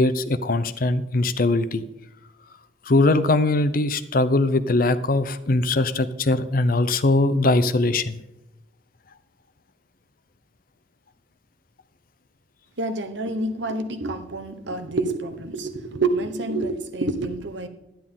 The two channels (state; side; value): normal; both; correlation 0.53